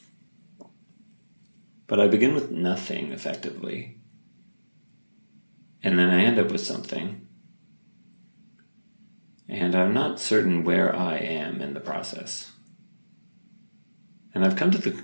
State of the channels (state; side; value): inverted; both; correlation -1.00